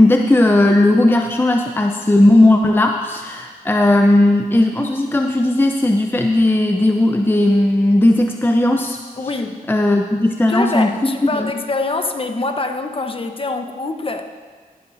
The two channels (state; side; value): normal; both; correlation 0.90